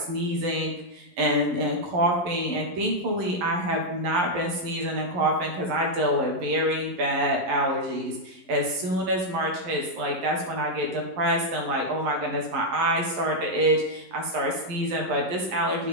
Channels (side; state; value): left; late; 11 ms